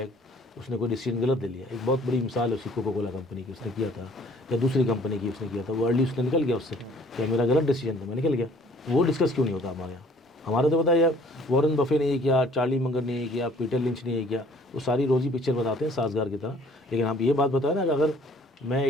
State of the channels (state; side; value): normal; both; correlation 0.56